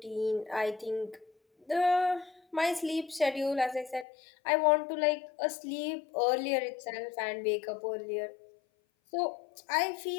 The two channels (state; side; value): drops out; right; at 4.0 s